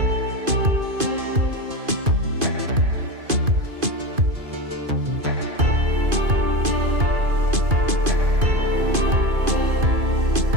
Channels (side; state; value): left; late; 2.5 ms